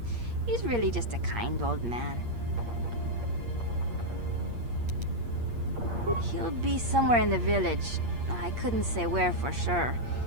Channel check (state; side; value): late; left; 8.5 ms